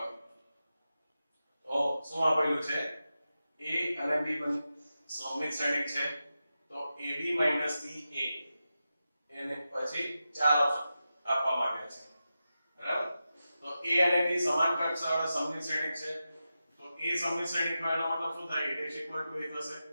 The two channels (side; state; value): both; inverted; correlation -0.91